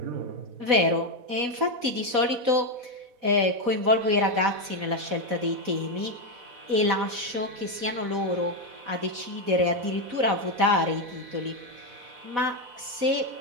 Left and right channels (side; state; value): left; late; 4.1 ms